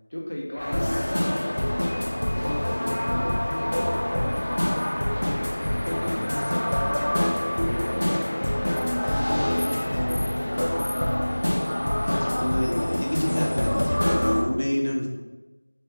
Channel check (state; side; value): inverted; both; correlation -1.00